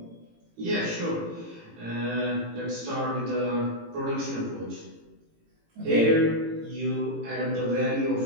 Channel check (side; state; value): left; late; 18 ms